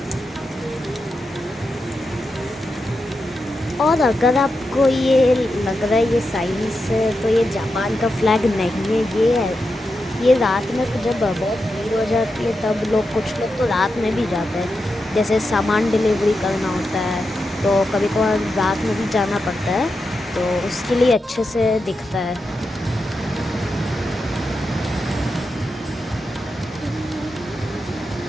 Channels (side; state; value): both; normal; correlation 0.88